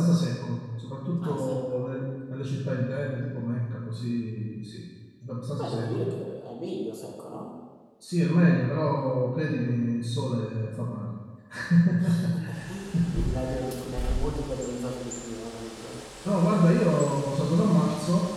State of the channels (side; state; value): both; identical; correlation 1.00